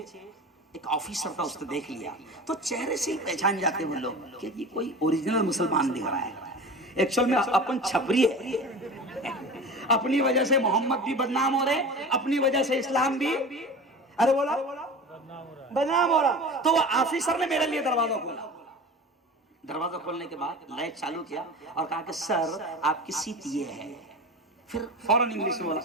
एक ऑफिसर था, उसने देख लिया, तो चेहरे से ही पहचान जाते वो लोग कि ये कोई ओरिजिनल मुसलमान दिख रहा है। एक्चुअल में अपन छपरी है, अपनी वजह से मोहम्मद भी बदनाम हो रहे, अपनी वजह से इस्लाम भी, अरे बोला बदनाम हो रहा। तो वो ऑफिसर ने मेरे लिए दरवाजा खोला। दरवाजा खोलने के बाद लाइट चालू किया और कहा कि सर आपकी सीट ये है। फिर फौरन इंग्लिश में बोला,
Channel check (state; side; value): normal; both; correlation 0.34